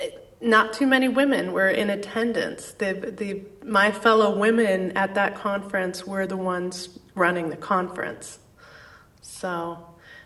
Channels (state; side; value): identical; both; correlation 1.00